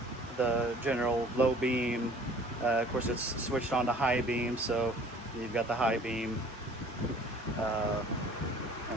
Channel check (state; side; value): normal; both; correlation 0.52